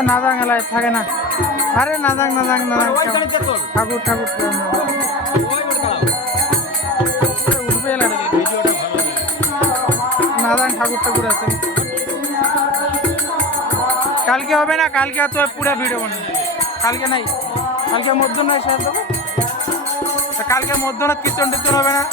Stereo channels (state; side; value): normal; both; correlation 0.27